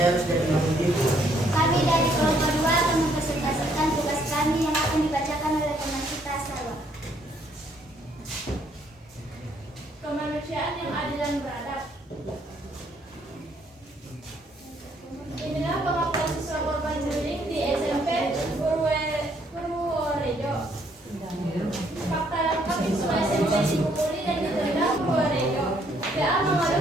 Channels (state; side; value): normal; both; correlation 0.68